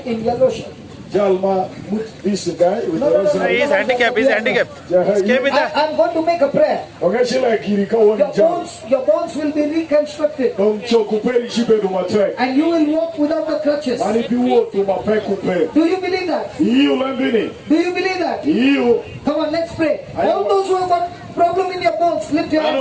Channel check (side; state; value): both; identical; correlation 1.00